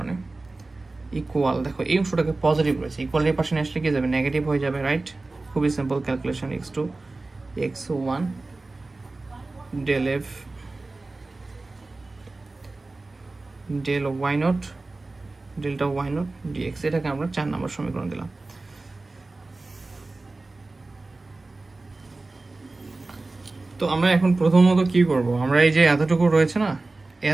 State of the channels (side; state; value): left; quieter; 3.3 dB